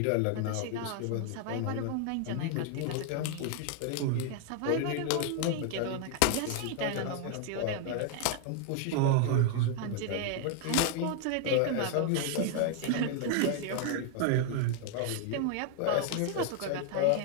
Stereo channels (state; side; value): different; both; correlation 0.00